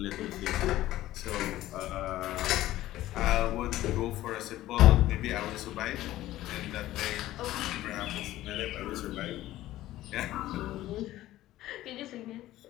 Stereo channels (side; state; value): right; quieter; 15.1 dB